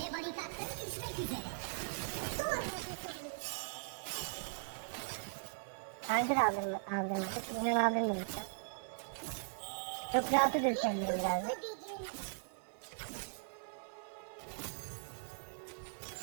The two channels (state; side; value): silent; left; 51 dB below the other